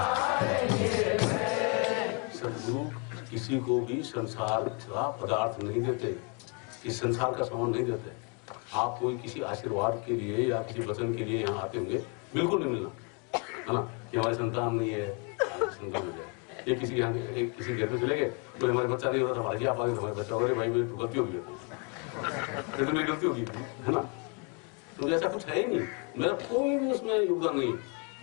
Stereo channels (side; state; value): right; quieter; 35.7 dB